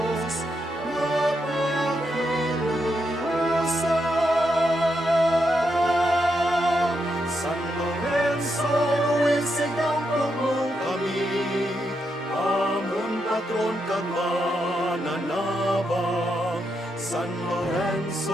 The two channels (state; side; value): normal; both; correlation 0.82